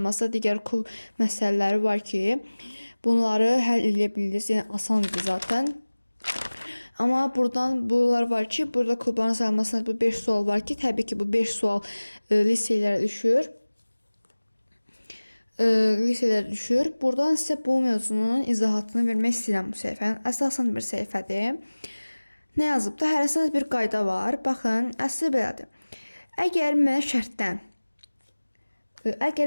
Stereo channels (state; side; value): inverted; both; correlation -1.00